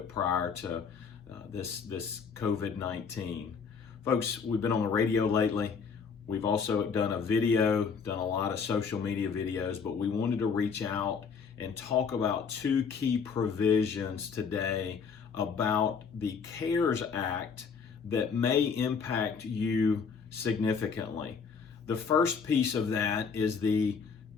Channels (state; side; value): quieter; right; 5.9 dB